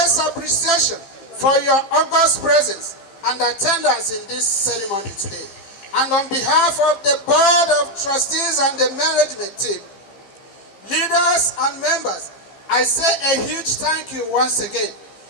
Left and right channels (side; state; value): right; late; 15 ms